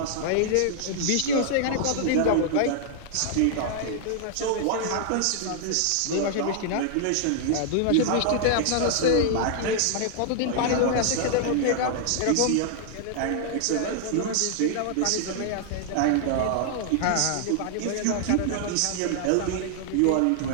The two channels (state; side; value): different; both; correlation -0.01